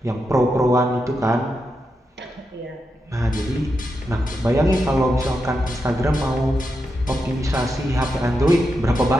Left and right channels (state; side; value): normal; both; correlation 0.86